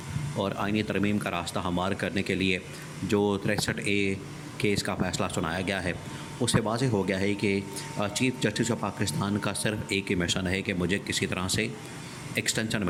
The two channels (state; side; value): identical; both; correlation 1.00